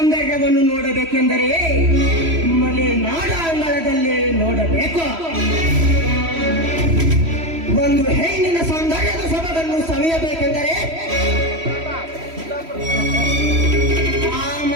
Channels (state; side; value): late; left; 3.0 ms